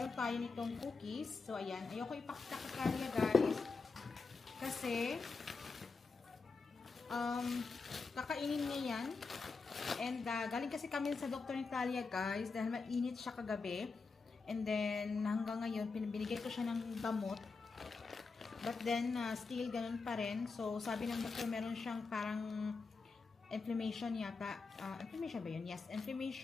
tayo nitong cookies. So ayan, ayoko ipakita ka Talia guys. Kasi kakainin niya yan. And galing kasi kami sa doktor ni Talia guys dahil mainit siya kagabi. And then hanggang ngayon binigay ko siya ng gamot. But then still ganun pa rin. So sabi ng doktor meron siyang parang inflammation yata. Inflammation ba yun? Yes.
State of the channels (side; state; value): right; quieter; 4.4 dB